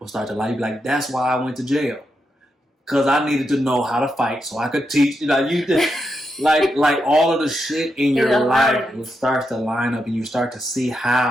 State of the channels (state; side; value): normal; both; correlation 0.84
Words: start to like, that's why I went to jail, because I needed to know how to fight so I could teach. Like all of the shit in your life will start to line up, and you start to see